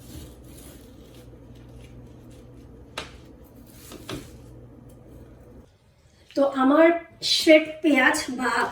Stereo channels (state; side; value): identical; both; correlation 1.00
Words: তো আমার শ্রেড পেঁয়াজ বা